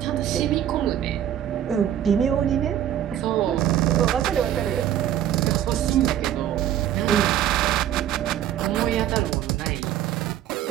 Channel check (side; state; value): left; quieter; 11.0 dB